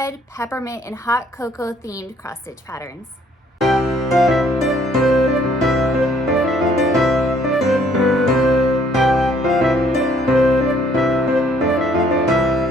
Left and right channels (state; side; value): normal; both; correlation 0.63